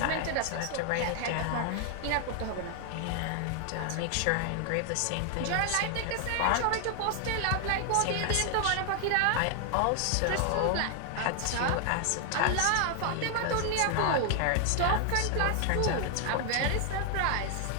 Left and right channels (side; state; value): both; different; correlation 0.00